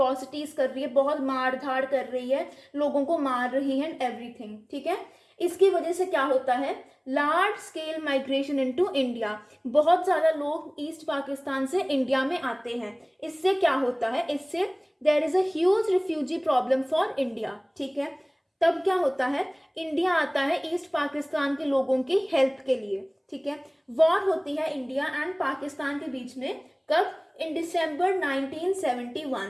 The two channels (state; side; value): identical; both; correlation 1.00